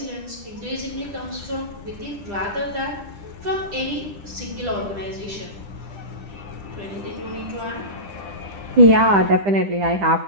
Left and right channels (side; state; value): left; late; 10 ms